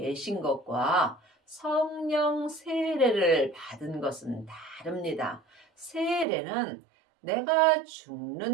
것과 성령 세례를 받은 것은 다릅니다. 세례는 내가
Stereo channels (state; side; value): drops out; left; at 6.2 s